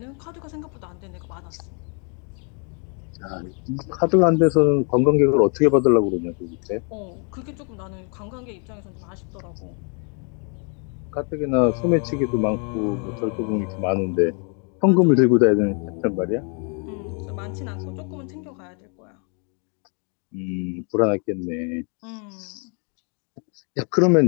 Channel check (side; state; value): right; quieter; 39.1 dB